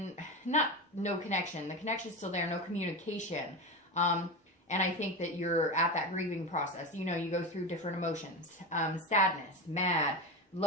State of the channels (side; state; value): both; normal; correlation 0.21